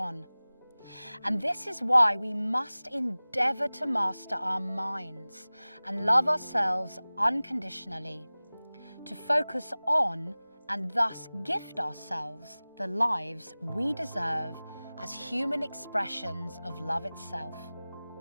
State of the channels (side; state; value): both; inverted; correlation -0.99